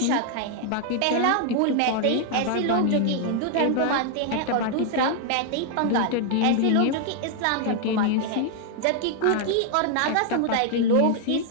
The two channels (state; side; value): different; both; correlation 0.00